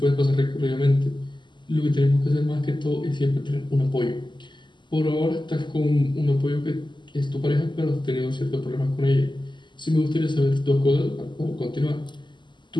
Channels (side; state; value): right; late; 0.22 ms